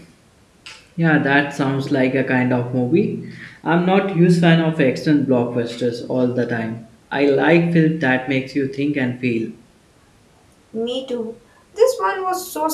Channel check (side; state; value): both; identical; correlation 1.00